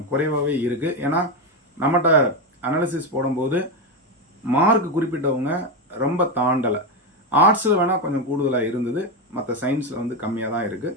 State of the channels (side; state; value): both; normal; correlation 0.11